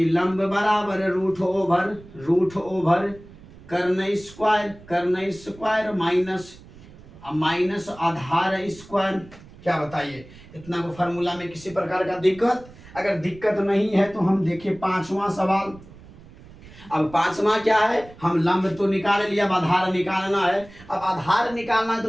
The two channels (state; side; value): noise; right; rumble, 20 dB below the sound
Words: लंब बराबर रूट ओवर कर्ण स्क्वायर माइनस आधार स्क्वायर। क्या बताइए, इतना को फार्मूला में किसी प्रकार का दिक्कत, अगर दिक्कत नहीं है तो हम देखें 5वां सवाल। अब 5वां क्या है, हम लंब तो निकाल लिया, अब आधार निकालना है। अब आधार निकालना है